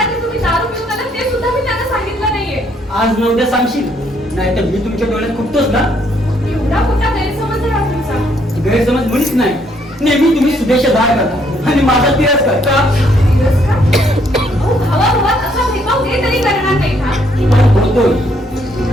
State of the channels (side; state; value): both; normal; correlation 0.70